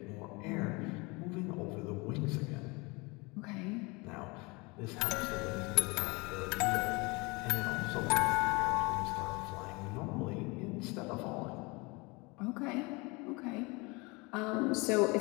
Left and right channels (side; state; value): right; quieter; 26.5 dB